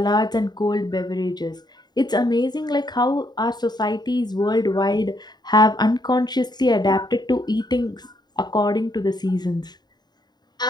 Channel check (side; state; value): right; late; 0.20 ms